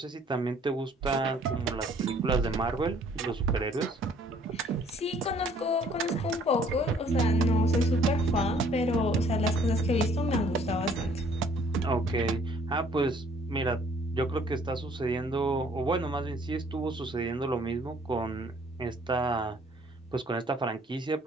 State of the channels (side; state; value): both; normal; correlation 0.59